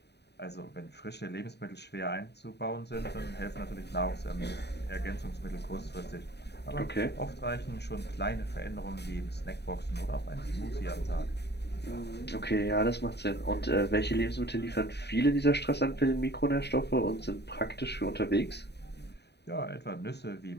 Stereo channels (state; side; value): late; right; 0.49 ms